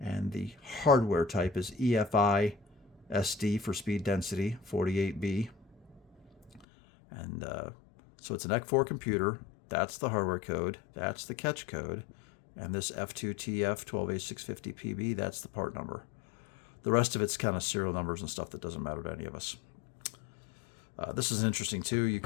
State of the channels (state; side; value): drops out; right; at 6.7 s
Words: the hardware type is EFI SD for speed density 48B. And so it's an EC4 computer. That's the hardware code. That's the catch code. And this F2TF12A650PB, that's the part number. The rest of it's kind of serial numbers and stuff that doesn't matter to any of us. This is interesting too. You